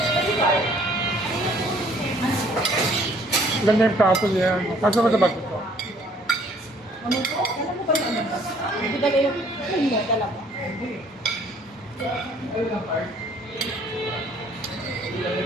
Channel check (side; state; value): both; normal; correlation 0.59